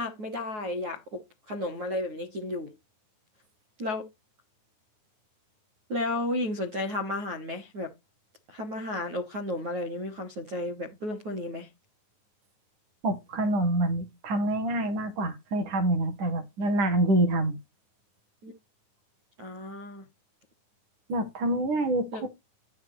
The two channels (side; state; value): left; late; 9.4 ms